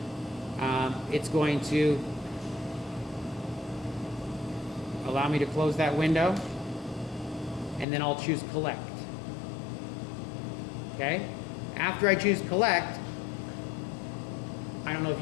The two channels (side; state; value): right; drops out; at 7.9 s